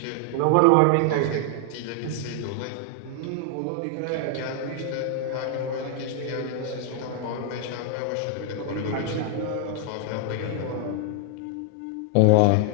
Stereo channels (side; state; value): both; different; correlation 0.00